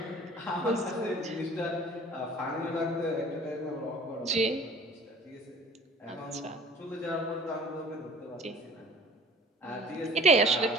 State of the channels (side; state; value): both; normal; correlation 0.48